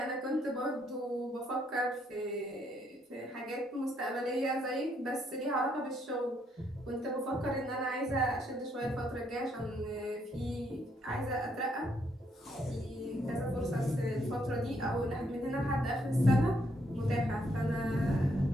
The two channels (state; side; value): normal; both; correlation 0.73